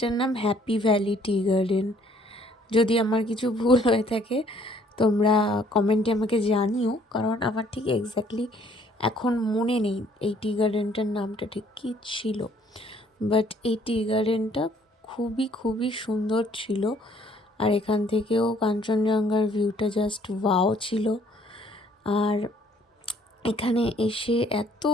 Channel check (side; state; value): both; normal; correlation 0.62